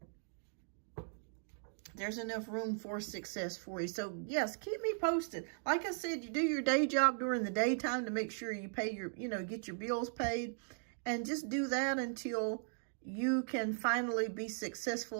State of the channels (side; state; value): left; silent; digital silence